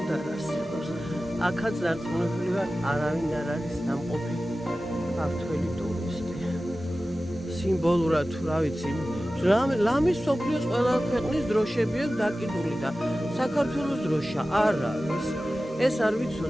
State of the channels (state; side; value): normal; both; correlation 0.95